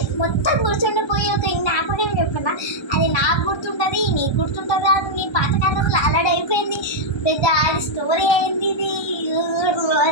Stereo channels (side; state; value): right; late; 1.3 ms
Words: మొత్తం గుర్తుండిపోయి ఒక జ్ఞాపకం చెప్పనా, అది నాకు గుర్తుంటుంది, నీకు గుర్తుంటుంది, అది నీ పాతకాలంలో అలర్ట్ అయిపోయింది, పెద్ద అది స్టోరీ అయింది. ఇది